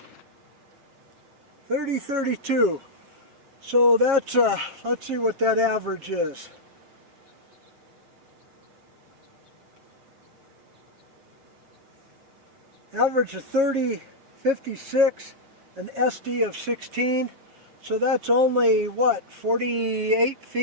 $30.32. So that's, let's see what that average is. Average of 30.56, an SD of 16. So that's only, what, 48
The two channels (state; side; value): late; left; 7.2 ms